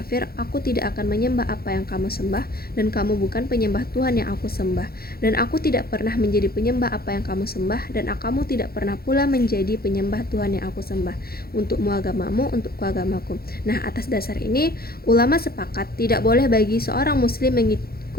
aku tidak akan menyembah apa yang kamu sembah, dan kamu bukan penyembah Tuhan yang aku sembah, dan aku tidak pernah menjadi penyembah apa yang kamu sembah, dan kamu tidak pernah pula menjadi penyembah Tuhan yang aku sembah. Untukmu agamamu, untukku agamaku. Nah, atas dasar ini ulama sepakat tidak boleh bagi seorang muslim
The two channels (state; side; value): late; right; 0.44 ms